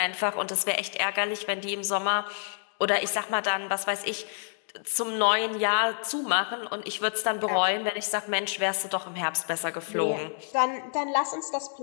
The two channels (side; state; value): right; silent; digital silence